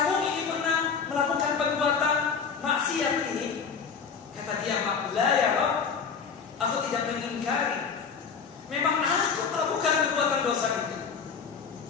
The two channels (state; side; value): quieter; right; 6.0 dB